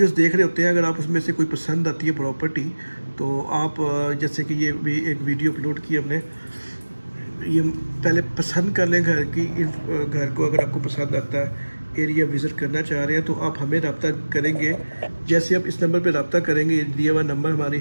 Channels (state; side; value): inverted; both; correlation -1.00